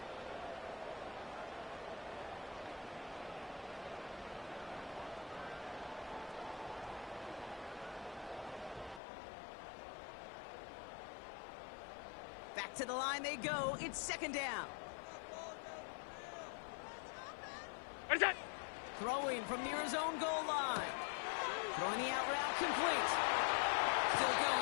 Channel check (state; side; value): drops out; right; at 9.0 s